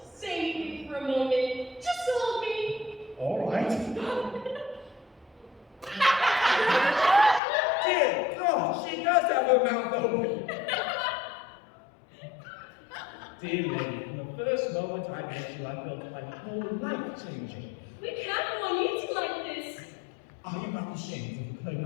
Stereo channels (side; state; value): right; drops out; at 7.4 s